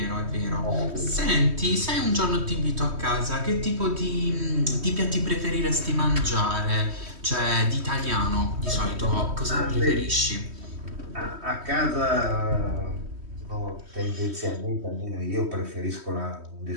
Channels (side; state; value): left; late; 3.1 ms